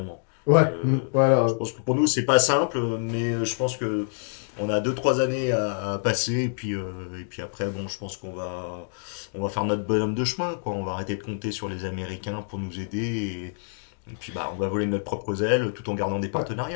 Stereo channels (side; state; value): right; silent; digital silence